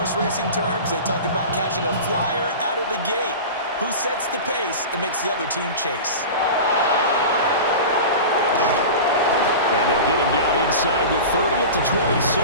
racing terms, they talk about catching a flyer out of the gate. Who sets the pace and makes the other team chase? And they'll get him down inside the 30 at the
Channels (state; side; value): inverted; both; correlation -0.30